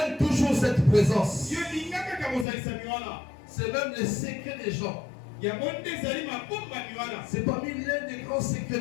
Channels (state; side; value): drops out; right; at 2.5 s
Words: toujours cette présence. C'est même le secret des gens. C'est parmi l'un des grands secrets